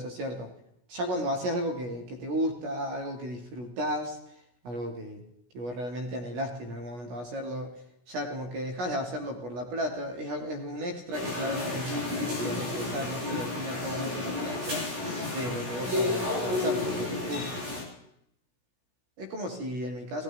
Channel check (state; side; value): late; left; 16 ms